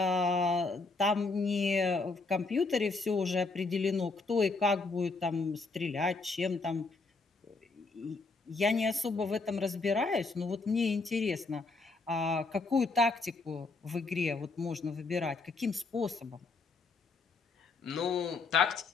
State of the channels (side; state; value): right; quieter; 3.8 dB